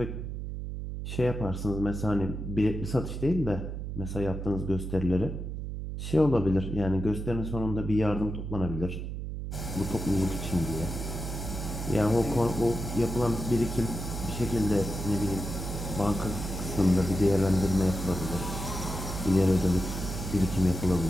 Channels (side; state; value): right; noise; hum, 5 dB below the sound